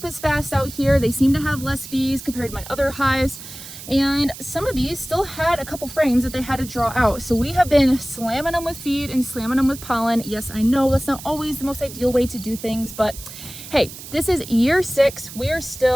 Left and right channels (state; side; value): noise; right; hiss, 13 dB below the sound